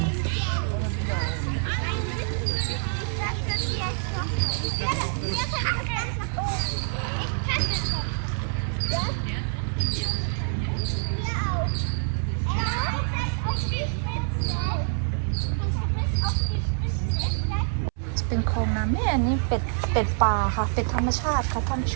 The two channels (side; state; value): left; silent; 61 dB below the other